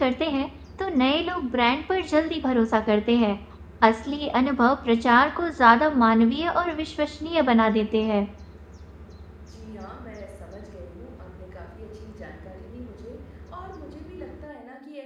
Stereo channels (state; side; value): identical; both; correlation 1.00